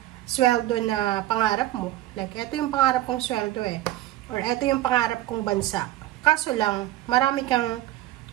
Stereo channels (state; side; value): quieter; left; 15.2 dB